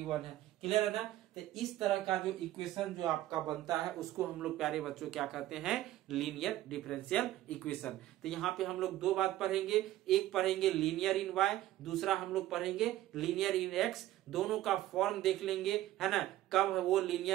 1 है। क्लियर है ना? तो इस तरह का जो इक्वेशन जो आपका बनता है उसको हम लोग प्यारे बच्चों क्या कहते हैं, लीनियर डिफरेंशियल इक्वेशन। तो यहाँ पे हम लोग दो बात पढ़ेंगे, एक पढ़ेंगे लीनियर इन y, दूसरा हम लोग पढ़ेंगे लीनियर इन x। दोनों का फॉर्म देख लेंगे, है ना, कब वो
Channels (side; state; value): left; quieter; 14.6 dB